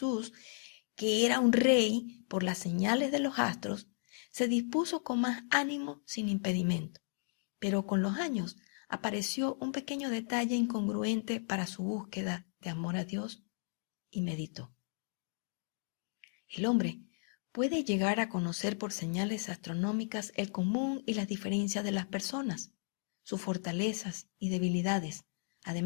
que era un rey por las señales de los astros, se dispuso con más ánimo sin impedimento. Pero con los años apareció un pequeño detalle incongruente para su búsqueda de amor a Dios y meditó. El hombre puede llegar a conocer por señales astronómicas el común y las diferencias de las personas, sus fortalezas y debilidades.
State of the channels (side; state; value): right; silent; digital silence